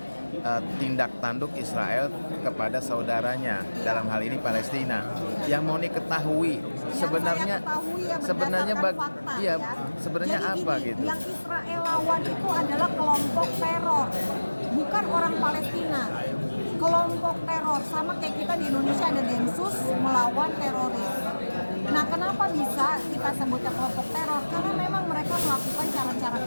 tindak tanduk Israel kepada saudaranya, dalam hal ini Palestina. Yang Monik ketahui sebenarnya sebenarnya fakta, iya, ya. sebenarnya Jadi apa gini, gitu? Yang Israel lawan itu adalah kelompok teror, bukan orang Palestina. Kelompok teror, sama kayak kita di Indonesia ada Densus melawan teroris. Nah, kenapa bisa kita sebutnya kelompok teror? Karena memang mereka melakukan cara-cara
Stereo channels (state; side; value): inverted; both; correlation -1.00